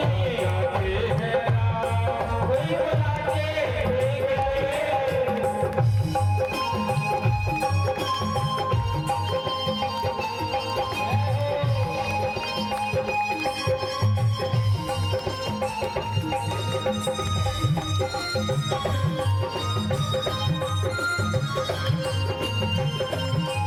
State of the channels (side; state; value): both; identical; correlation 1.00